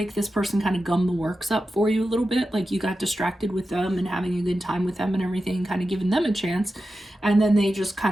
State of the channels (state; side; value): normal; both; correlation 0.92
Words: this person kind of gummed the works up for you a little bit. Like, you got distracted with them and having a good time with them and everything, kind of giving them a chance, and then they just